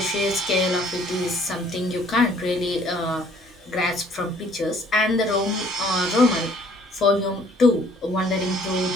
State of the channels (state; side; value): normal; both; correlation 0.59